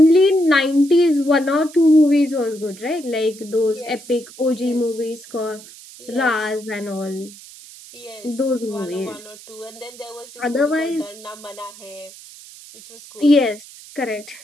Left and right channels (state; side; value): noise; right; hiss, 19 dB below the sound